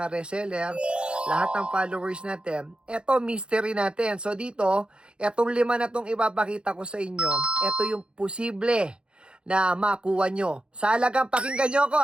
reseller, lahat ng followers natin, eto mystery natin. So dito, etong 5 na tong ipapakita ko sa inyo, eto yung posible na makuha nyo. Sa halagang, pakinggan nyo ako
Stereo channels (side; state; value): left; late; 0.054 ms